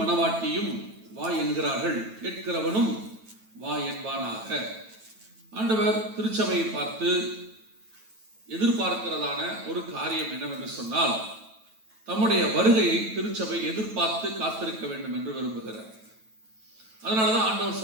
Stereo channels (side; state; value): left; late; 9.1 ms